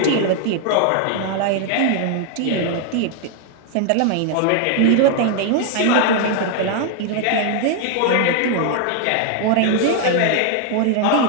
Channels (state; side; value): different; both; correlation 0.00